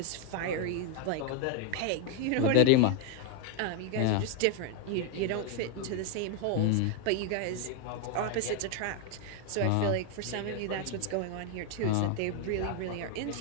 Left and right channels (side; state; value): both; different; correlation 0.01